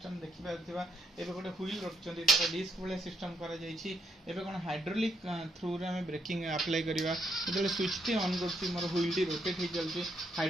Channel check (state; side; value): normal; both; correlation 0.76